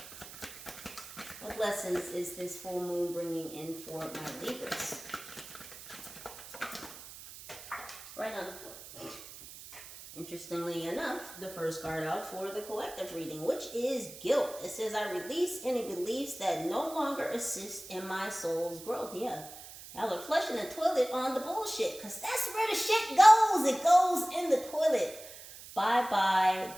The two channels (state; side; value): noise; right; hiss, 15 dB below the sound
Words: What lessons is this full moon bringing in for my Libras? Right on the floor. Interestingly enough, the first card out for the collective reading, which is guilt. It says, I release any beliefs that no longer assist in my soul's growth. Yeah, y'all are flushing the toilet on the bullshit, because that's where the shit goes. It goes in the toilet. Bye-bye,